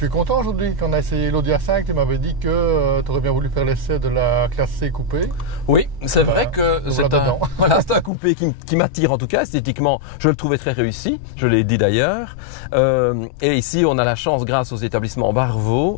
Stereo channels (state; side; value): drops out; right; at 8.1 s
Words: es content aujourd'hui quand on a essayé l'Audi A5, tu m'avais dit que tu aurais bien voulu faire l'essai de la classe C coupée. Oui, c'est vrai que c'est un coupé qui m'attire en tout cas esthétiquement. Je le trouvais très réussi, je l'ai dit d'ailleurs. Et ici on a la chance grâce aux établissements